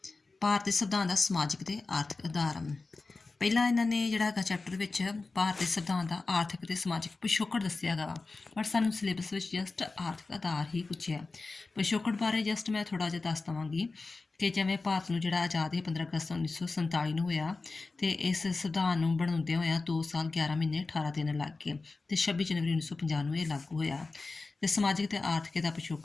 ਭਾਰਤੀ ਸੰਵਿਧਾਨ ਦਾ ਸਮਾਜਿਕ ਤੇ ਆਰਥਿਕ ਆਧਾਰ। ਪਹਿਲਾਂ ਇਹਨਾਂ ਨੇ ਜਿਹੜਾ ਹੈਗਾ ਚੈਪਟਰ ਵਿੱਚ ਭਾਰਤੀ ਸੰਵਿਧਾਨ ਦਾ ਆਰਥਿਕ ਤੇ ਸਮਾਜਿਕ ਪਿਛੋਕੜ ਦੱਸਿਆ ਹੈਗਾ ਬਟ ਸਾਨੂੰ ਸਿਲੇਬਸ ਵਿੱਚ ਜਸਟ ਆਰਥਿਕ ਆਧਾਰ ਹੀ ਪੁੱਛਿਆ। ਪਿਛੋਕੜ ਬਾਰੇ ਜਸਟ ਮੈਂ ਥੋੜ੍ਹਾ ਜਿਹਾ ਦੱਸ ਦੇਵਾਂਗੀ ਕਿ ਜਿਵੇਂ ਭਾਰਤ ਨੂੰ ਜਿਹੜਾ ਆਜ਼ਾਦ 15 ਅਗਸਤ 1947 ਨੂੰ ਹੋਇਆ ਅਤੇ ਇਸ ਸੰਵਿਧਾਨ ਨੂੰ ਬਣਾਉਂਦਿਆਂ ਹੋਇਆਂ 2 ਸਾਲ 11 ਮਹੀਨੇ 18 ਦਿਨ ਲੱਗ ਗਏ ਅਤੇ 26 ਜਨਵਰੀ 1950 ਨੂੰ ਇਹ ਲਾਗੂ ਹੋਇਆ। ਅਤੇ ਸਮਾਜਿਕ ਅਤੇ ਆਰਥਿਕ ਦਾ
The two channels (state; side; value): quieter; right; 3.7 dB